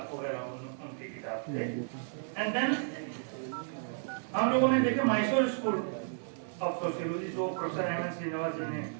वगैरह उनकी किताब थे। एंड देन हम लोगों ने देखे मैसूर स्कूल ऑफ सोशियोलॉजी जो प्रोफेसर एम.एन. श्रीनिवास जी ने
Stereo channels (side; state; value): left; silent; digital silence